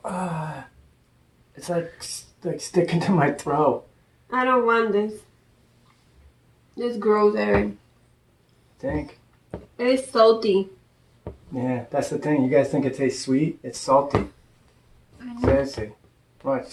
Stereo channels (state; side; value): identical; both; correlation 1.00